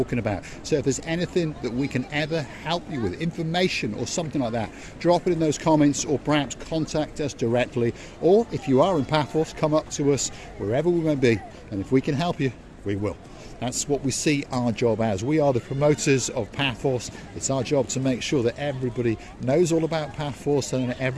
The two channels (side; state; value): both; identical; correlation 1.00